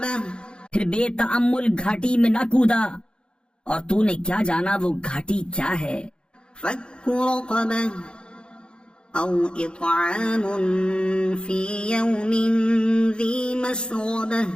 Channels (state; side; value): late; right; 0.052 ms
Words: پھر بے تأمل گھاٹی میں نہ کودا، اور تو نے کیا جانا وہ گھاٹی کیا ہے؟ فک رقبہ او اطعام فی یوم ذی مسغبہ